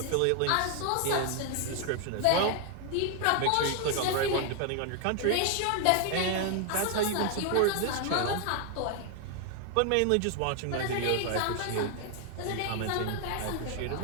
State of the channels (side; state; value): both; different; correlation 0.00